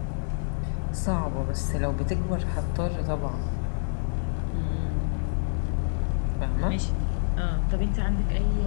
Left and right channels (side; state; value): right; silent; 58 dB below the other